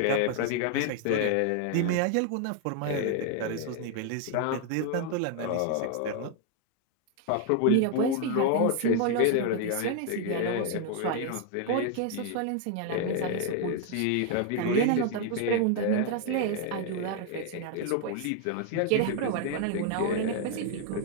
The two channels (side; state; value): both; different; correlation 0.00